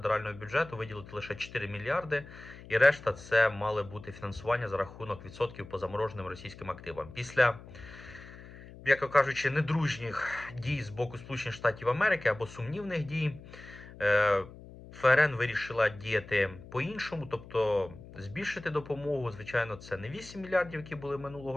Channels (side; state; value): left; noise; hum, 17 dB below the sound